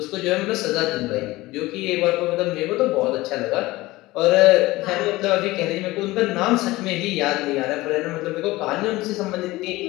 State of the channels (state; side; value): quieter; right; 19.3 dB